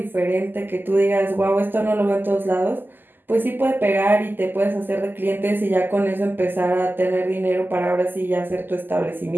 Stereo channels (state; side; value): late; left; 0.091 ms